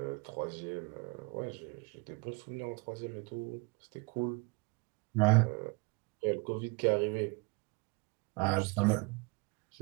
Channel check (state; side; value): quieter; left; 28.8 dB